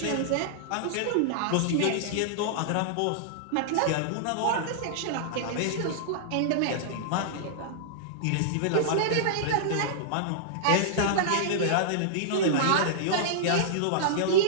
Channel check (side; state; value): both; different; correlation -0.02